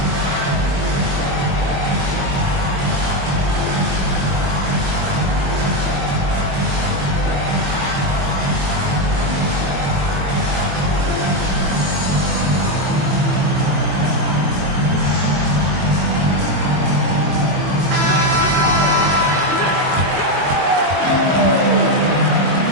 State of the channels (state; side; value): late; left; 22 ms